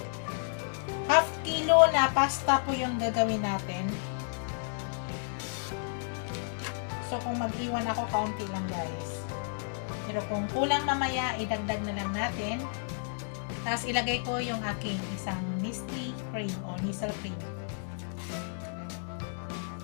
Half kilo na pasta po yung gagawin natin. So kung mag-iwan ako, kaunti lang guys. Pero kung kulang mamaya, idagdag na lang natin. Tapos ilagay ko yung aking isang Nestle cream o Nestle cream.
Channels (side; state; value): right; silent; 57 dB below the other